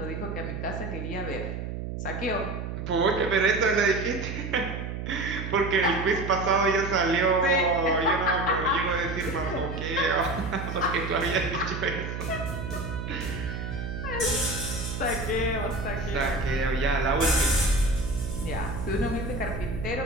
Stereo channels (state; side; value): noise; right; hum, 5 dB below the sound